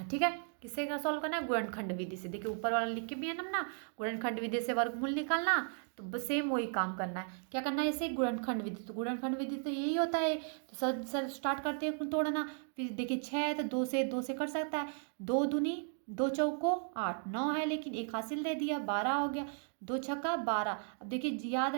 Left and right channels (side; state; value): left; silent; 54 dB below the other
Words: ठीक है। किससे सॉल्व करना है? गुणनखंड विधि से। देखिए ऊपर वाला लिख के भी है ना, गुणनखंड विधि से वर्गमूल निकालना, तो बस सेम वही काम करना है। क्या करना है इसे? गुणनखंड विधि। तो गुणनखंड विधि तो यही होता है। तो सर स्टार्ट करते हैं तोड़ना। फिर देखिए 6 है तो 2 से कर सकता है। 2 दूनी 2 चौको 8, 9 है लेकिन एक हासिल दे दिया, 12 हो गया। 2 छक्का 12। अब देखिए याद